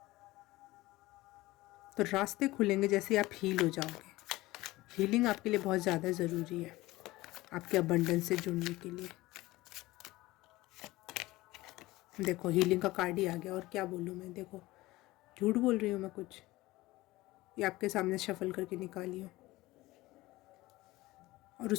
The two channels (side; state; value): right; quieter; 19.0 dB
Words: तो रास्ते खुलेंगे जैसे आप हील हो जाओगे। हीलिंग आपके लिए बहुत ज़्यादा ज़रूरी है, आपके अबंडेंस से जुड़ने के लिए। देखो हीलिंग का कार्ड ही आ गया, और क्या बोलूँ मैं, देखो झूठ बोल रही हूँ मैं कुछ, ये आपके सामने शफल करके निकाली हूँ। और